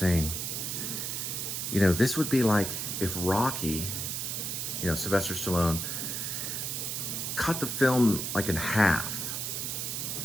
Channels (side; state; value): right; noise; hiss, 3 dB below the sound